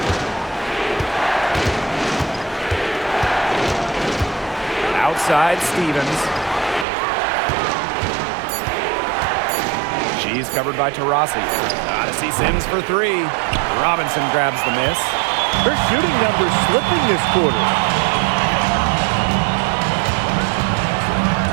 Outside Stevens. She's covered by Taurasi. Gotta see Sims for 3. Robinson grabs the miss. Her shooting numbers slipping this quarter.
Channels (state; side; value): drops out; left; at 6.9 s